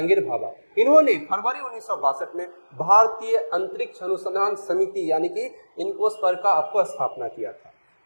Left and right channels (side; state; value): both; inverted; correlation -1.00